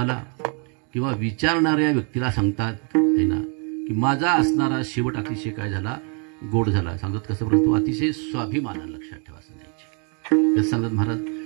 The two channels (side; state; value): left; quieter; 37.9 dB